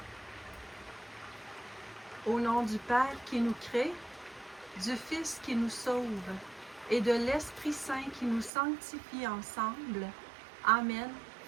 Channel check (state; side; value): drops out; left; at 8.5 s